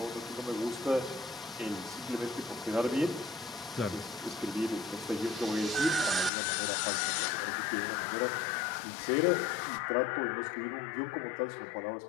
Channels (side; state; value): right; drops out; at 6.3 s